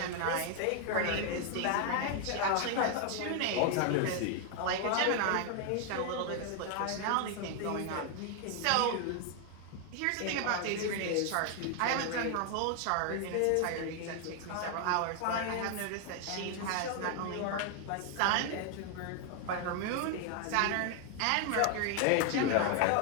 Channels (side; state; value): both; different; correlation 0.00